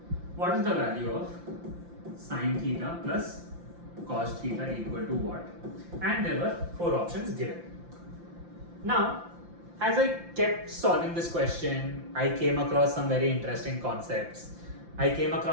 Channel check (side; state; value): left; late; 5.8 ms